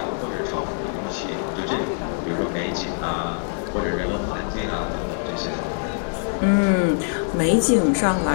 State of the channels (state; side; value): silent; right; digital silence